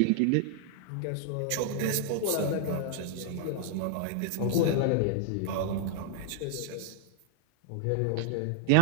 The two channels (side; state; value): both; different; correlation -0.01